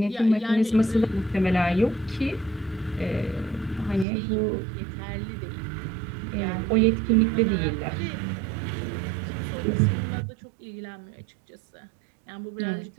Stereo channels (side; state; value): left; drops out; at 4.0 s